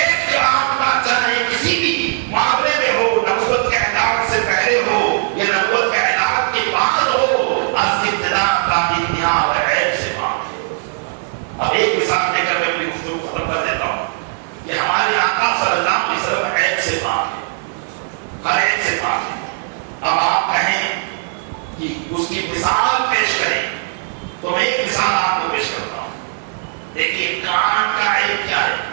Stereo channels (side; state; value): left; silent; 57 dB below the other